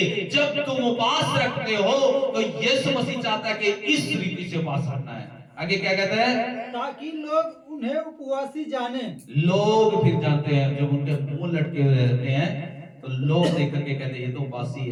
जब तुम उपवास रखते हो तो यीशु मसीह चाहता है कि इस रीति से उपवास रखना है। आगे क्या कहता है, ताकि लोग उन्हें उपवासी जाने। लोग फिर जानते हैं, जब उनके मुंह लटके हुए रहते हैं तो लोग देख करके कहते हैं ये तो उपवासी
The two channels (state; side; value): identical; both; correlation 1.00